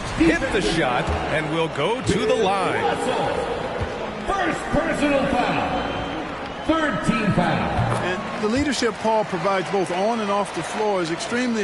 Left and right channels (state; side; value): identical; both; correlation 1.00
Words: Hit the shot and will go to the line. First personal foul. Third team foul. And the leadership Paul provides both on and off the floor is